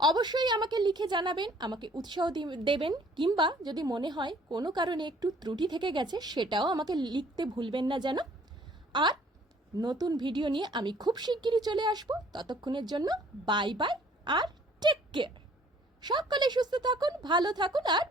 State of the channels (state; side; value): normal; both; correlation 0.57